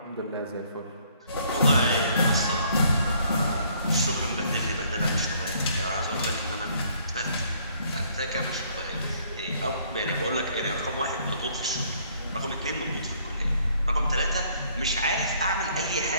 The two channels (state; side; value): inverted; both; correlation -0.63